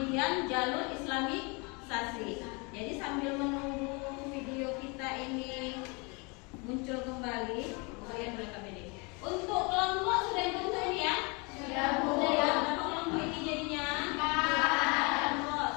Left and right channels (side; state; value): right; quieter; 30.2 dB